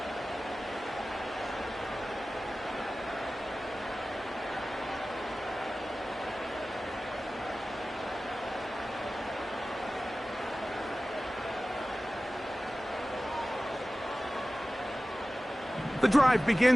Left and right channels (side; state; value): both; normal; correlation 0.96